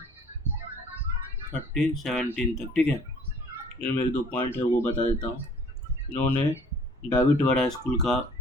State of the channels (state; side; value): normal; both; correlation 0.54